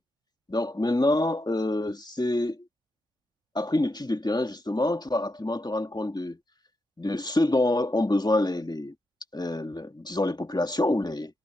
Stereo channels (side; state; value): both; normal; correlation 0.84